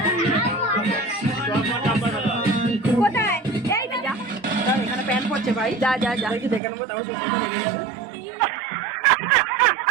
কোথায়? এই না, যা এখানে প্যান্ট পরছে ভাই, যা যা যা, দেখি দেখে নেবো, তারপর সুস্মিতা লেগে যাবে।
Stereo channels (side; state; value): left; drops out; at 6.6 s